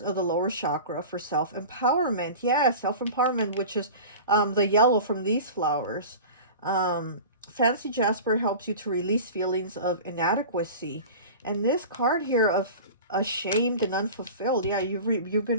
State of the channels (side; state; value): both; inverted; correlation -0.35